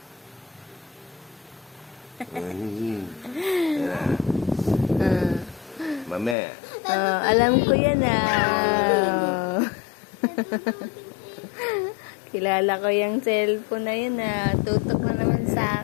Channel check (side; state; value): right; drops out; at 6.4 s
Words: Ayan na. Mame. Alam ko yan Kilala ko yung cellphone na yun Tutok na naman